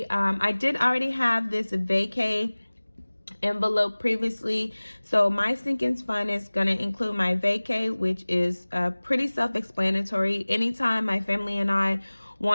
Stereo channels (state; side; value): inverted; both; correlation -1.00